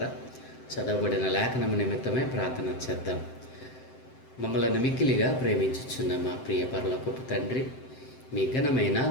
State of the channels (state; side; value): late; right; 7.7 ms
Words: చదవబడిన లేఖనము నిమిత్తమే ప్రార్థన చేద్దాం. మమ్మల్ని మిక్కిలిగా ప్రేమించుచున్న మా ప్రియ పరలోకపు తండ్రి, మీ ఘనమైన